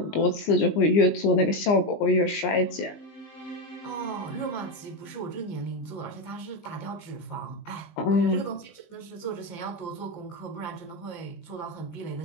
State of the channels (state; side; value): late; right; 20 ms